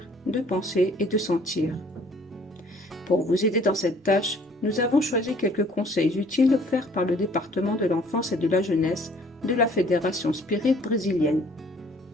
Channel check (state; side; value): normal; both; correlation 0.57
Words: de penser et de sentir. Pour vous aider dans cette tâche, nous avons choisi quelques conseils utiles offerts par le département de l'enfance et de la jeunesse de la Fédération Spirit brésilienne.